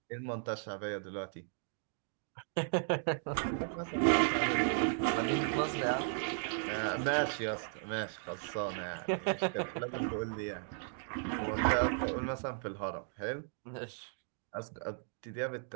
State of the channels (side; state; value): left; silent; digital silence